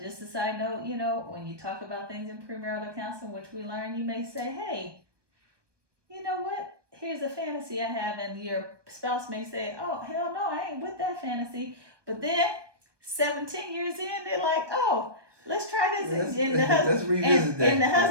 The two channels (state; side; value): late; left; 1.2 ms